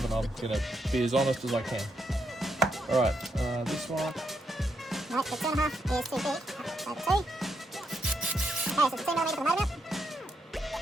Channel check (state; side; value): normal; both; correlation 0.80